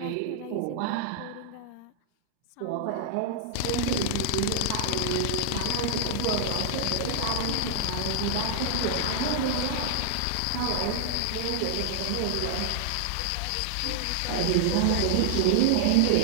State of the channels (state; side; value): different; both; correlation -0.01